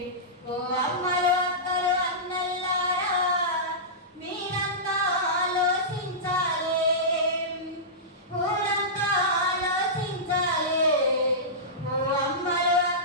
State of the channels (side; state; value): both; normal; correlation -0.17